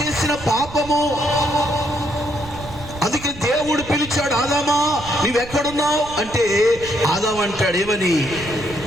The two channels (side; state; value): right; noise; rumble, 15 dB below the sound